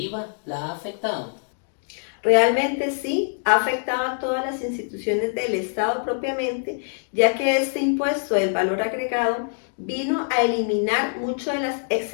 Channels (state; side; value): silent; right; digital silence